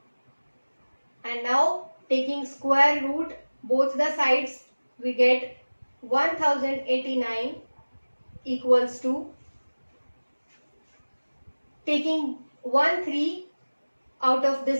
And now taking square root both the sides, we get 1089 equals to, taking 1 3 out of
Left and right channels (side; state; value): both; inverted; correlation -1.00